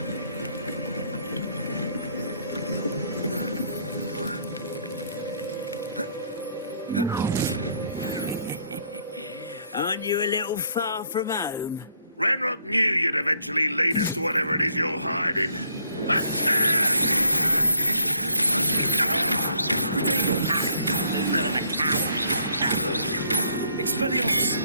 Aren't you a little far from home? Ranrock knew you'd eventually lead us to whatever it is you're hiding. Expelliarmus!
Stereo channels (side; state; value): both; inverted; correlation -0.67